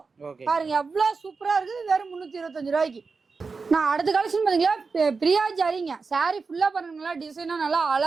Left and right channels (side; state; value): left; quieter; 4.6 dB